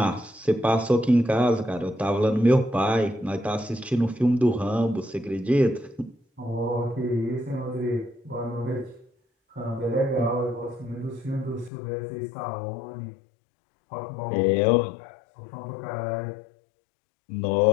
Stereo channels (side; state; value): right; drops out; at 11.7 s